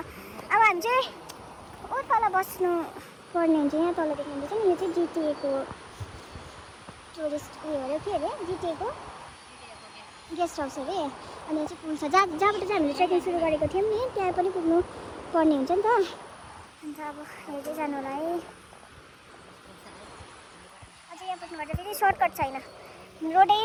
हामी चाहिँ ओ तल बस्नु पर्ने हुन्छ। यहाँ तल देख्नुहुन्छ नि, यो चाहिँ जिटिएको टुरिस्ट उयो अरे, के अरे जिटिएको गेस्ट हाउस अरे। अनि यहाँ चाहिँ पुल छ जहाँबाट चाहिँ हामीले ट्रेकिङ सुरु गरेको थियौँ नि, त्यहाँ पनि पुग्नु पर्ने हुन्छ नि त। अन्त अब हेर्दै जानु होला है। अझै यहाँ पुग्नुपर्छ, फेरि सर्टकट छैन, रोड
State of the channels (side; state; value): both; identical; correlation 1.00